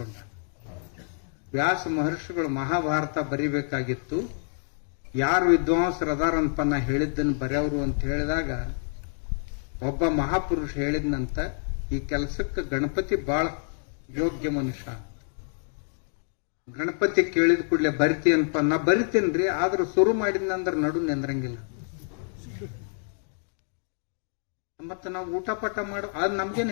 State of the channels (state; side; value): silent; right; 60 dB below the other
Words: ವ್ಯಾಸ ಮಹರ್ಷಿಗಳು ಮಹಾಭಾರತ ಬರಿಬೇಕಾಗಿತ್ತು. ಯಾರು ವಿದ್ವಾಂಸರದಾರಂತ ನಾ ಹೇಳಿದ್ದನ್ನು ಬರೆಯವರು ಅಂತ ಹೇಳಿದಾಗ ಒಬ್ಬ ಮಹಾಪುರುಷ ಹೇಳಿದ್ನಂತ, ಈ ಕೆಲಸಕ್ಕೆ ಗಣಪತಿ ಬಹಳ ಯೋಗ್ಯ ಮನುಷ್ಯ. ಗಣಪತಿ ಕೇಳಿದ ಕೂಡಲೇ ಬರಿತೀನಪ್ಪ. ನಾ ಬರಿತೀನ್ರಿ, ಆದ್ರೂ ಶುರು ಮಾಡಿದ್ನಂದ್ರ ನಡು ನಿಂದ್ರಂಗಿಲ್ಲ. ಮತ್ತ ನಾವು ಊಟ ಪಟ ಮಾಡು ಅದ್ ನಮ್ಗೇನ್